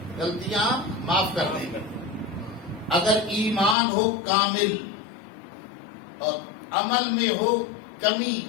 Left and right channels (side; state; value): right; drops out; at 3.8 s